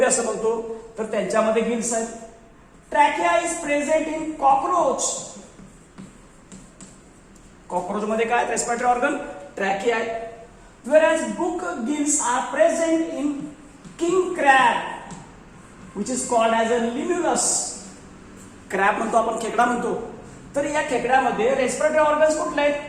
असं म्हणतो, तर त्यांच्यामध्ये गिल्स आहेत. Trachea is present in cockroach. Cockroach मध्ये काय रेस्पिरेटरी ऑर्गन ट्रॅकिया आहे. Whereas book gills are present in king crab. Which is called as a limulus. Crab म्हणतो आपण, खेकडा म्हणतो. तर या खेकड्यामध्ये रेस्पिरेटरी ऑर्गन्स कुठले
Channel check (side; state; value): both; identical; correlation 1.00